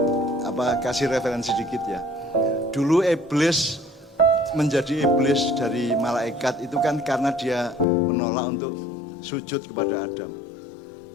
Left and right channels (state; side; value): drops out; right; at 7.9 s